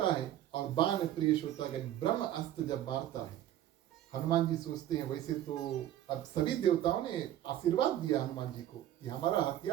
है और बाण प्रिय श्रोतागण ब्रह्म अस्त्र जब मारता है, हनुमान जी सोचते हैं वैसे तो अब सभी देवताओं ने आशीर्वाद दिया हनुमान जी को कि हमारा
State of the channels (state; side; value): quieter; left; 12.4 dB